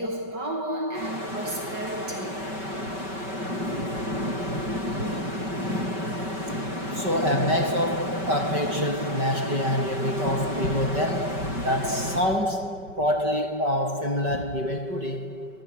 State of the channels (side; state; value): left; late; 5.2 ms